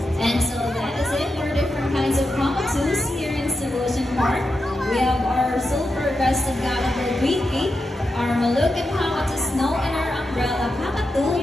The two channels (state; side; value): normal; both; correlation 0.88